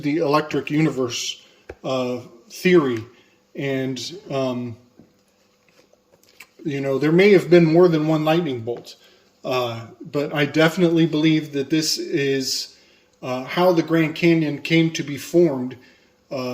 the electric universe theory. And there may have been more than one lightning bolt, but I definitely believe that this is how the Grand Canyon came to be formed,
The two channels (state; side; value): identical; both; correlation 1.00